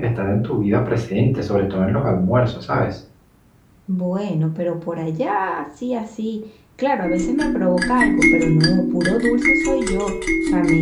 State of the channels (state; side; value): identical; both; correlation 1.00